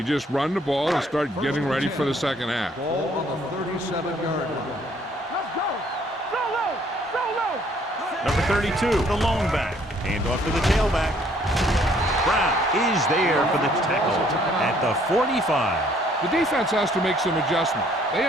just run the ball and start getting ready for the second half. Ball on the 37-yard line. Let's go. Throw low. Number 32, the lone back. Hand off to the tailback. Brown is there for the tackle at the 45. The defense has to make some adjustments. They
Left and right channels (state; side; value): normal; both; correlation 0.63